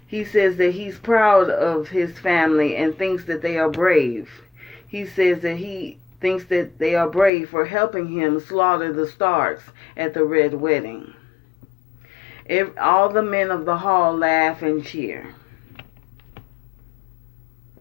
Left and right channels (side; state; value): right; drops out; at 7.3 s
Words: He says that he's proud of his family and thinks that they are brave. He says that he thinks that they are brave for helping him slaughter the Starks at the Red Wedding. All the men of the hall laugh and cheer.